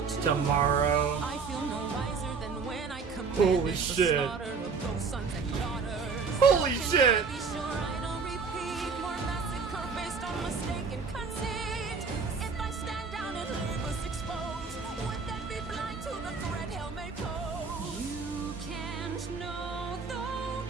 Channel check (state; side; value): quieter; left; 5.2 dB